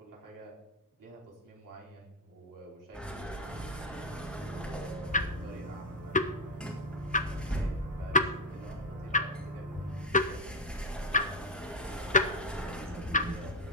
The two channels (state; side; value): normal; both; correlation 0.02